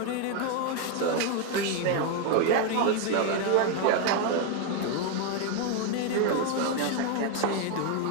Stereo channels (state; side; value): different; both; correlation 0.01